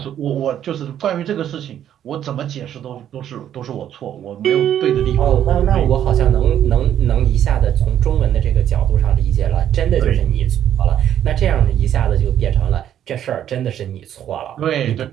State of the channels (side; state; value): left; quieter; 10.5 dB